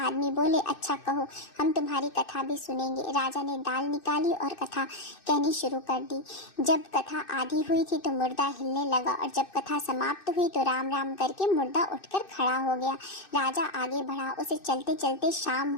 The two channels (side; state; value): right; late; 2.6 ms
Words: आदमी बोले, अच्छा कहो, हम तुम्हारी कथा भी सुनेंगे। राजा ने दाल निकाली और कथा कहनी शुरू कर दी। जब कथा आधी हुई थी तो मुर्दा हिलने लगा और जब कथा समाप्त हुई तो राम राम करके मुर्दा उठकर खड़ा हो गया। राजा आगे बढ़ा। उसे चलते चलते शाम